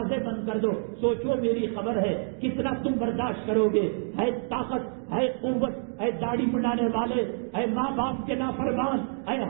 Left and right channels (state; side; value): silent; left; 60 dB below the other